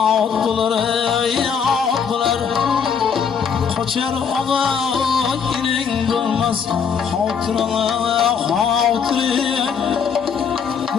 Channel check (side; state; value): right; quieter; 6.7 dB